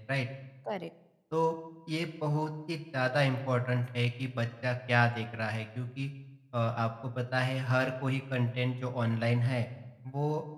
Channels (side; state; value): both; identical; correlation 1.00